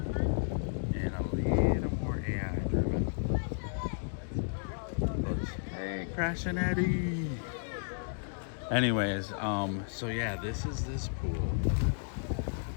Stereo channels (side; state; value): right; silent; digital silence